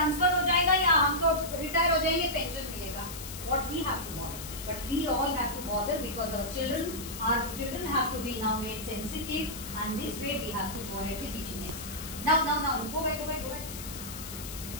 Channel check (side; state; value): left; noise; hiss, 10 dB below the sound